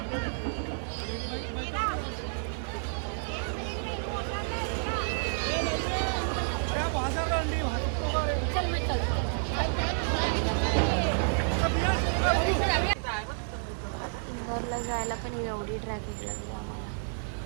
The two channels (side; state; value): left; silent; 58 dB below the other